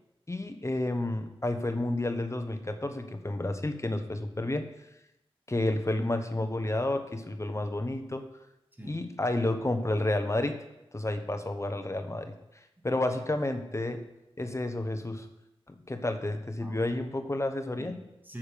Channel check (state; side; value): normal; both; correlation 0.89